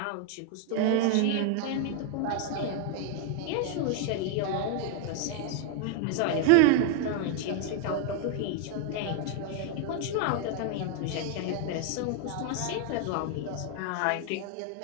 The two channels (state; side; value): different; both; correlation 0.00